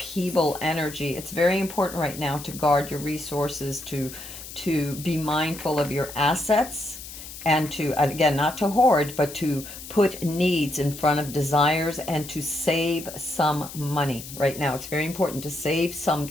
energy. It's very important right now to guard your resources, to be mindful of your assets, and to, again, not to hoard, but to put needs in front of desires and to save some money right now. It's very important to save some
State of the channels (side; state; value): left; noise; hiss, 13 dB below the sound